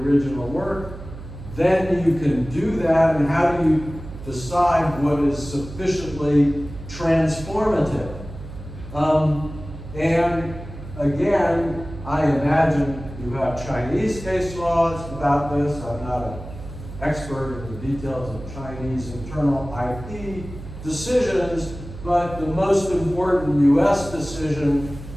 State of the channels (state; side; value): noise; right; hum, 13 dB below the sound